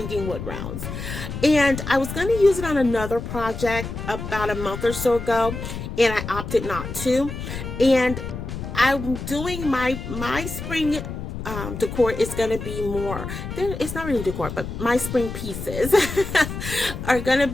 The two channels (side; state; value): left; noise; rumble, 7 dB below the sound